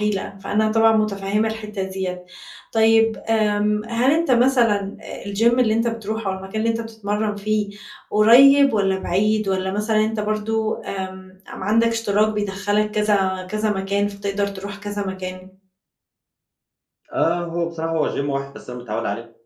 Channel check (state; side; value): identical; both; correlation 1.00